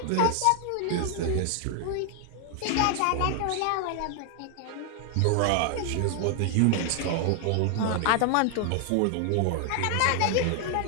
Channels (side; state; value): both; different; correlation 0.00